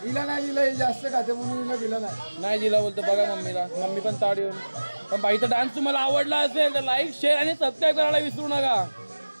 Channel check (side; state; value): both; inverted; correlation -1.00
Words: हिला नाही दिलं, जास्त खाते म्हणून हिला दिलं नाही दिला बोलतो. बघा मम्मीला, मम्मी पण ताड येऊन. पण बाईचा डान्स तुम्हाला आवडला असेल तर लाईक, शेअर आणि सबस्क्राईब करायला विसरू नका.